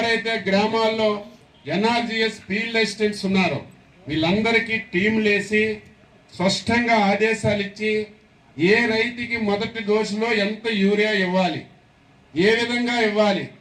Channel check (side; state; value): both; identical; correlation 1.00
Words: గ్రామాల్లో ఎన్ఆర్జీఎస్ ఫీల్డ్ అసిస్టెంట్స్ ఉన్నారో వీళ్ళందరికీ టీంలు వేసి స్పష్టంగా ఆదేశాలు ఇచ్చి ఏ రైతుకి మొదటి డోసులో ఎంత యూరియా ఇవ్వాలి, ఏ విధంగా ఇవ్వాలి,